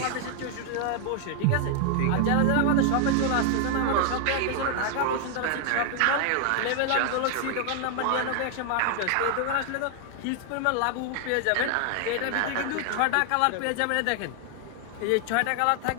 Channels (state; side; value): different; both; correlation 0.00